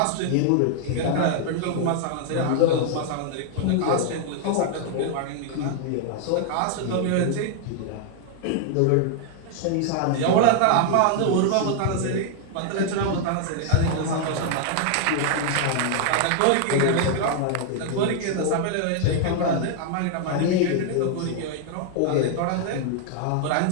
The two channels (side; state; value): both; different; correlation 0.00